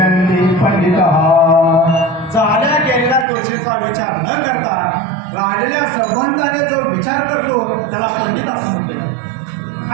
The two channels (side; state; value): left; drops out; at 3.2 s